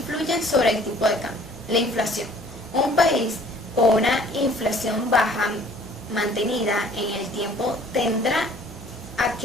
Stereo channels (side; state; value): both; normal; correlation 0.55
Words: sobre el tipo de cambio. La inflación. Un país con una inflación baja mantenida en el tiempo tenderá a